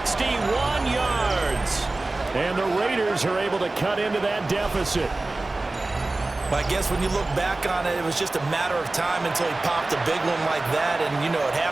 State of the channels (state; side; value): quieter; left; 3.0 dB